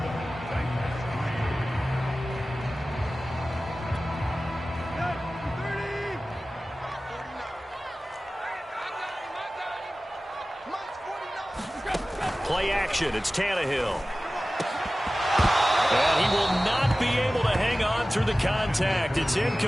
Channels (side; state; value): both; normal; correlation 0.96